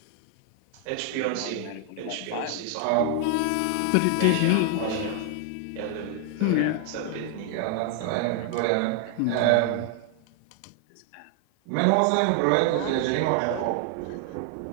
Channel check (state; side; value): different; both; correlation 0.00